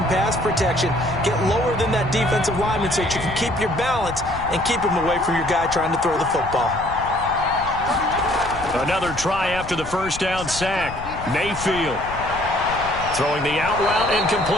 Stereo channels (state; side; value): noise; left; rumble, 12 dB below the sound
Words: pass protection. Get lower than that defensive lineman so that you can keep your balance and keep him away from your guy trying to throw the football. Another try after the first down sack. Mayfield throwing the out route